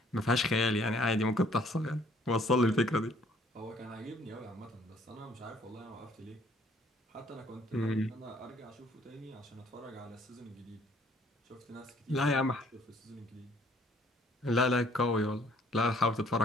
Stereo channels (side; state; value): both; normal; correlation 0.61